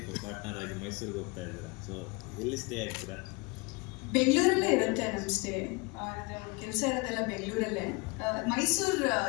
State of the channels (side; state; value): right; quieter; 27.9 dB